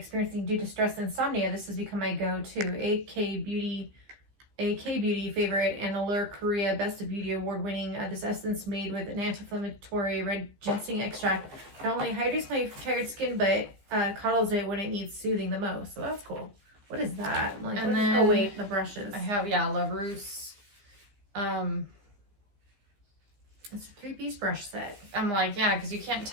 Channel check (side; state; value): left; late; 15 ms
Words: due to stress and insomnia. This has become my go-to. AK Beauty favorite, and Allure Korea Best of Beauty award-winning. This essence made with an anti-inflammatory red ginseng extract not only hydrates my tired skin, but coddles it when it needs soothing the most. So that's cool. What is that? Like, And what then is, oh wait, the brushes. I have, yeah, La Rousse. It's a 3-piece brush set. I'm like, yeah, because you can't